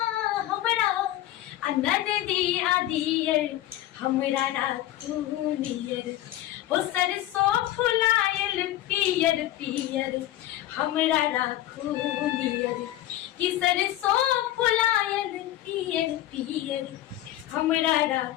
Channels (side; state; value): right; quieter; 14.1 dB